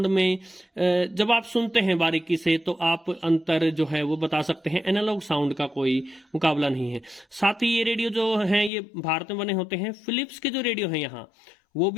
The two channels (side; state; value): right; drops out; at 8.7 s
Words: में जब आप सुनते हैं बारीकी से तो आप अंतर जो है वो बता सकते हैं। एनालॉग साउंड का कोई मुकाबला नहीं है। साथ ही ये रेडियो जो हैं ये भारत में बने होते हैं। फिलिप्स के जो रेडियो हैं यहाँ वो